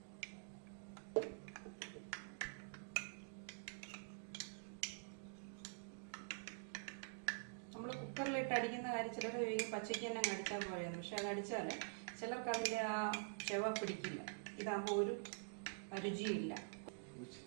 നമ്മൾ കുക്കറിലിട്ട് അടിക്കുന്ന കാര്യം ചിലർ പച്ചയ്ക്ക് തന്നെ അടിച്ചാൽ പോലെയാണ്. പക്ഷെ അത് അടിച്ചാൽ ചിലർക്ക് അതിൻ്റെ ആ ചെവ പിടിക്കില്ല. ഇതാകുമ്പോൾ ഒരു രുചിയില്ല.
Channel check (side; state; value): left; silent; digital silence